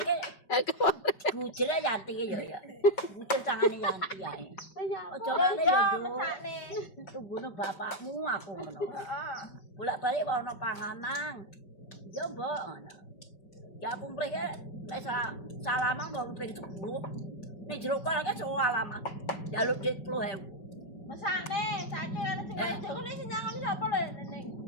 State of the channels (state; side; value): late; right; 5.3 ms